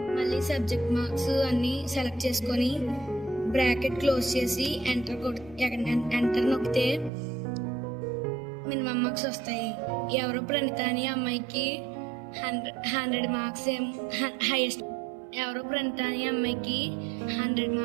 మళ్ళీ సబ్జెక్ట్ మార్క్స్ అన్నీ సెలెక్ట్ చేసుకొని బ్రాకెట్ క్లోజ్ చేసి ఎంటర్ నొక్కితే మినిమం మార్క్స్ వస్తాయి. ఎవరో ప్రణిత అని అమ్మాయికి 100 మార్క్స్ ఎవరో ప్రణిత అని అమ్మాయికి 100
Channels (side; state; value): left; drops out; at 7.1 s